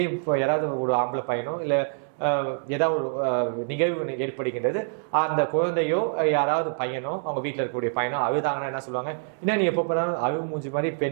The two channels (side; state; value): left; silent; digital silence